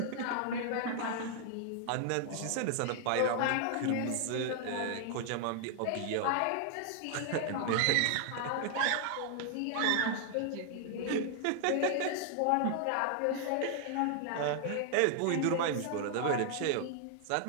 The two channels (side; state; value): both; different; correlation 0.00